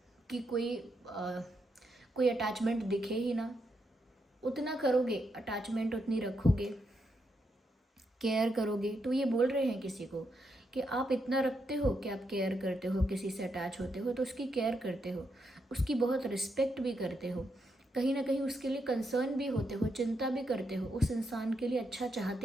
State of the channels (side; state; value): both; normal; correlation 0.81